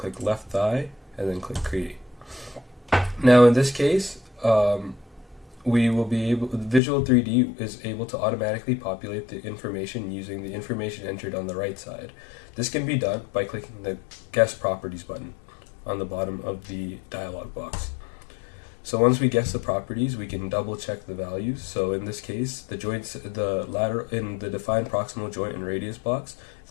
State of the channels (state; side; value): drops out; right; at 6.8 s